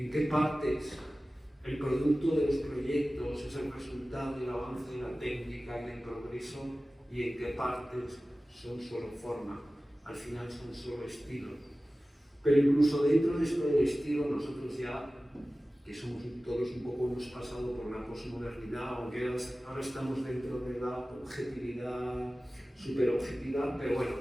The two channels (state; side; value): normal; both; correlation 0.96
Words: qué partes el producto de los proyectos es el resultado del avance de la técnica y del progreso, y en qué partes son solo forma, al final son solo estilo. Pero incluso dentro de esto del estilo, nosotros ya, que somos todos un poco, hemos pasado por la posmodernidad, aunque ahora estamos dentro de la objetividad, superobjetividad, pero bueno,